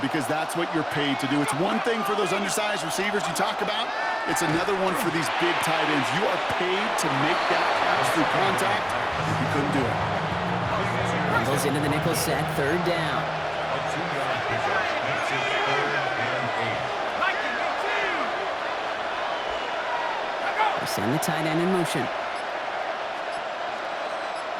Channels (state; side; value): identical; both; correlation 1.00